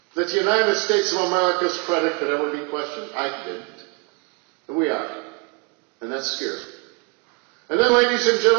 that the United States of America's credit could ever be questioned? I didn't. And we are. And that scares me. And then, ladies and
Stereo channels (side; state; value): left; quieter; 29.6 dB